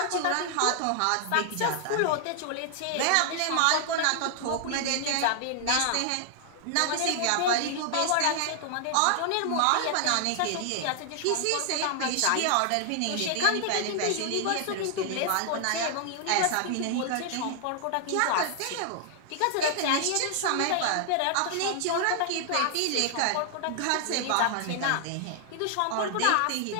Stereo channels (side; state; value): both; different; correlation 0.00